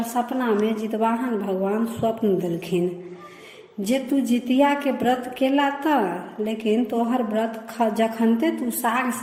सपना में जितवाहन भगवान स्वप्न देलखिन जे तू जितिया के व्रत केला तऽ लेकिन तोहर व्रत जखनते तू साग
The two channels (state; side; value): identical; both; correlation 1.00